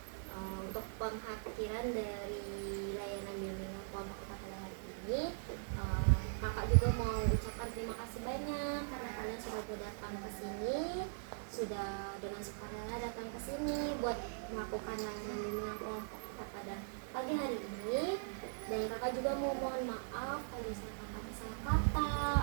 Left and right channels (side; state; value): left; silent; digital silence